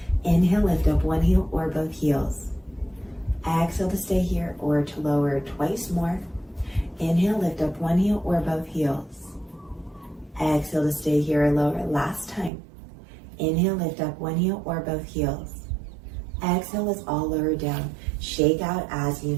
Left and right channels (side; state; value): left; drops out; at 12.5 s